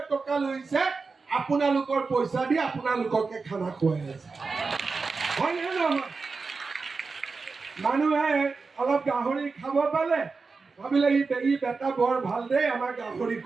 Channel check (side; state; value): left; quieter; 4.4 dB